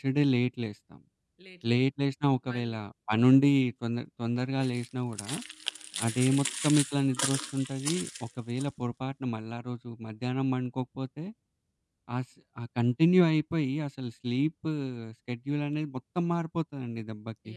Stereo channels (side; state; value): both; identical; correlation 1.00